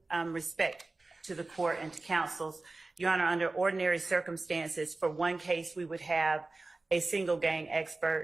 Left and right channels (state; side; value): quieter; left; 3.3 dB